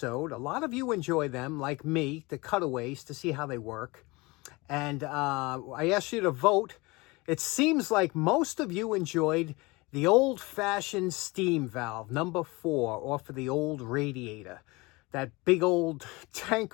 A lot of you enjoy them, like me, the cutaways, to see how they work. And I asked you to vote. It seems like most of you enjoyed the old-fashioned steam valve, number 4, off of the old radiator. That big old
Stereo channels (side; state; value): right; quieter; 24.1 dB